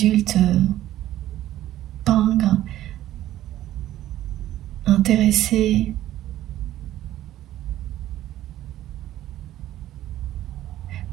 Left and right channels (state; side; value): quieter; left; 13.5 dB